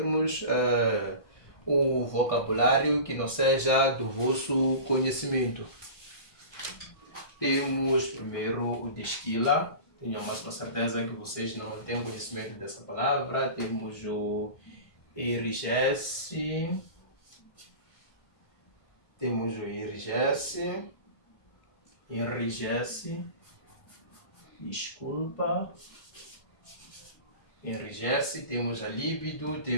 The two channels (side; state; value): right; late; 1.5 ms